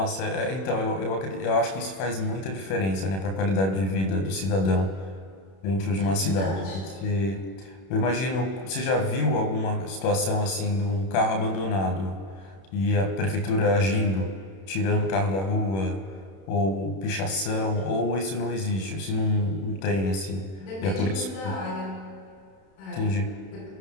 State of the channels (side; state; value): right; late; 31 ms